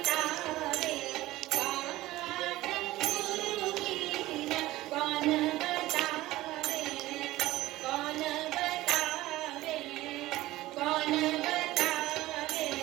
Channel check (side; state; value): left; quieter; 17.1 dB